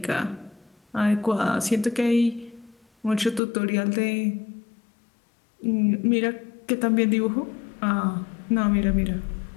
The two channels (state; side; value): drops out; right; at 3.4 s